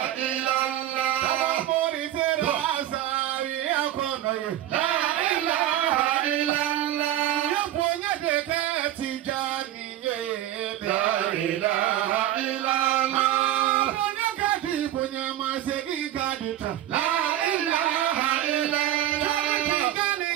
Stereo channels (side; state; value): left; quieter; 12.9 dB